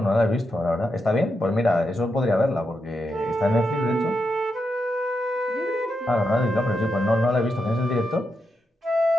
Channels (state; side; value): normal; both; correlation 0.85